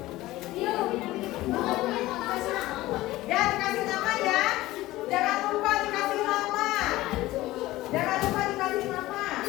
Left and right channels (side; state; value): right; quieter; 17.4 dB